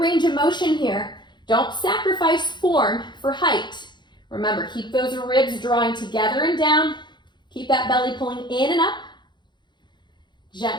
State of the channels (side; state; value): right; late; 0.22 ms